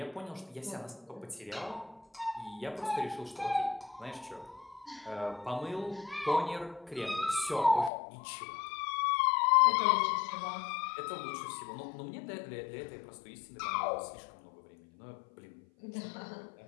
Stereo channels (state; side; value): drops out; right; at 7.9 s